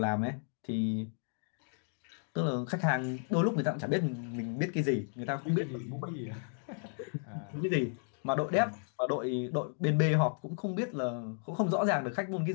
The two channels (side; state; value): right; silent; 55 dB below the other